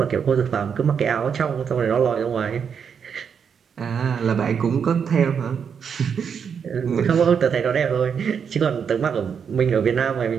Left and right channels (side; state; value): left; quieter; 7.0 dB